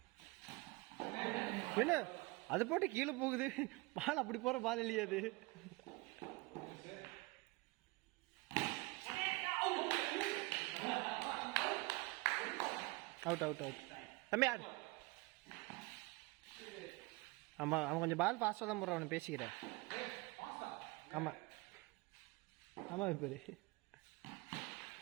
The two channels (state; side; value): quieter; left; 23.7 dB